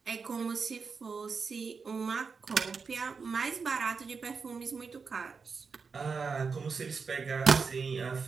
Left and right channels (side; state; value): left; quieter; 5.2 dB